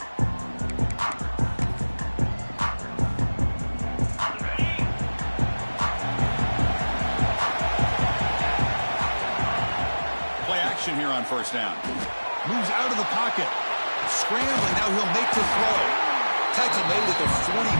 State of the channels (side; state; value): both; inverted; correlation -1.00